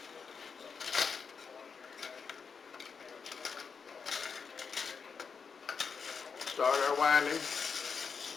start our winding.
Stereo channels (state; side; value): quieter; right; 5.8 dB